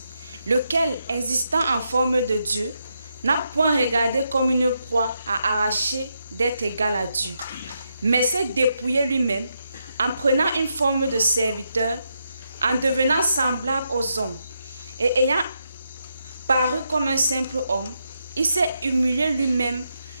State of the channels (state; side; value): inverted; both; correlation -0.82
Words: lequel, existant en forme de Dieu, n'a point regardé comme une proie à arracher d'être égal à Dieu, mais s'est dépouillé lui-même en prenant une forme de serviteur, en devenant semblable aux hommes, et ayant paru comme un simple homme, il s'est humilié lui-même,